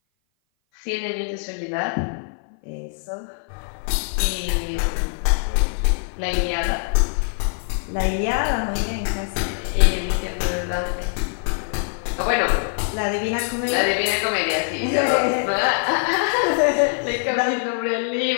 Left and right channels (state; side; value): silent; right; 57 dB below the other